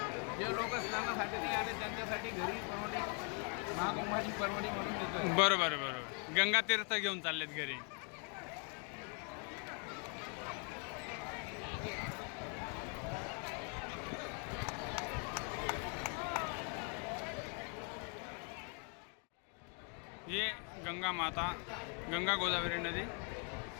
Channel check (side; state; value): right; quieter; 39.2 dB